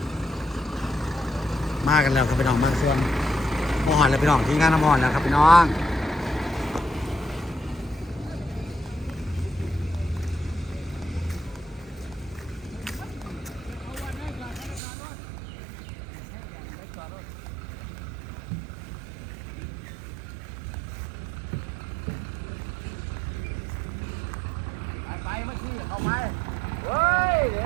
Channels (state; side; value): drops out; left; at 14.8 s